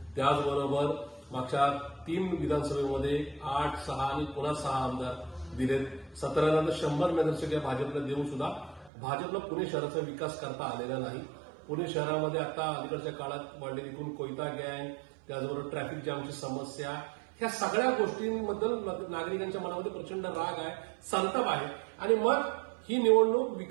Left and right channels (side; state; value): left; drops out; at 8.9 s